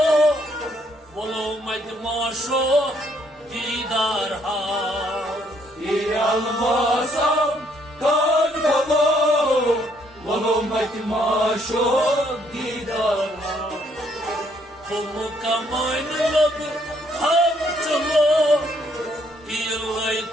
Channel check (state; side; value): normal; both; correlation 0.69